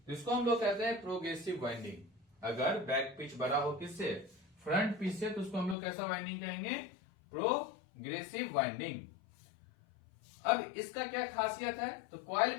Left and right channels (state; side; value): drops out; right; at 5.8 s